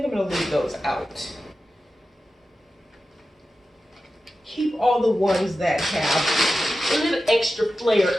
I'm gonna leave those out. Keep all the ones that have a little extra flair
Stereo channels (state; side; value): normal; both; correlation 0.93